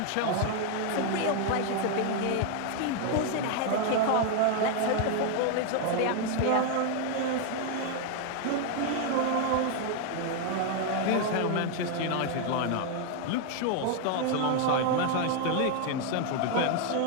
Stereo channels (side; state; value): both; different; correlation 0.01